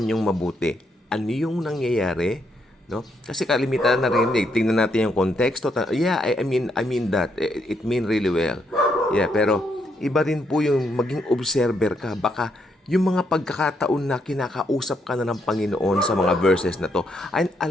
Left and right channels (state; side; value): normal; both; correlation 0.76